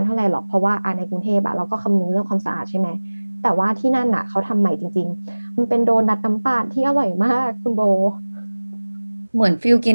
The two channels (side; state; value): both; inverted; correlation -1.00